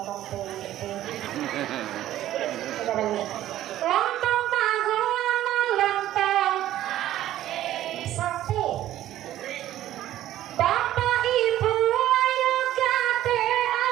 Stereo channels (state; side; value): quieter; left; 13.3 dB